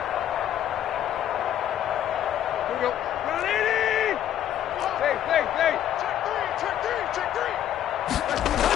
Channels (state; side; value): quieter; right; 11.1 dB